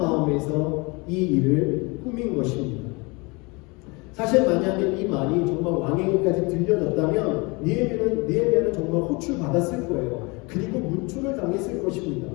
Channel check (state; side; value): quieter; right; 27.4 dB